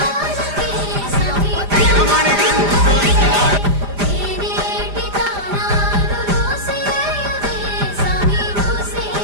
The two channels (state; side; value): late; left; 5.0 ms